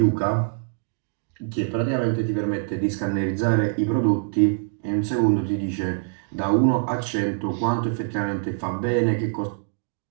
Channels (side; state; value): left; silent; digital silence